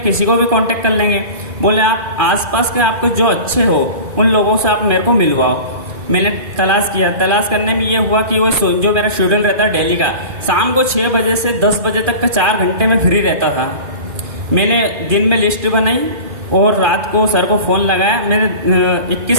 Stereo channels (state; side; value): late; left; 2.4 ms